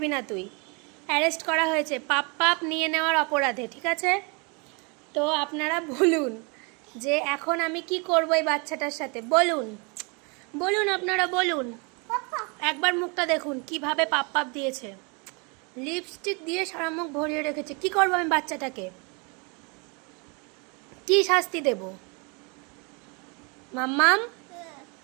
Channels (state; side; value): quieter; left; 31.9 dB